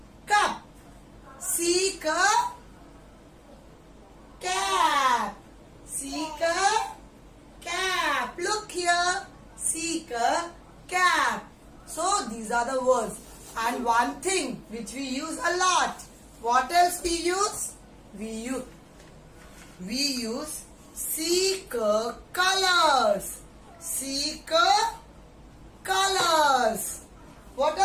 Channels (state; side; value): identical; both; correlation 1.00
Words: cup. Seek a cap. Seek a cap. Look here. Seek a cap. So these are the words. And one thing which we use a lot. What else we use? We use seek colors. Seek colors. What